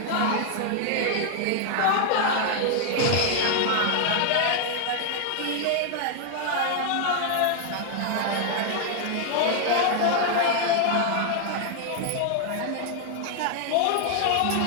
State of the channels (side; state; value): both; different; correlation 0.00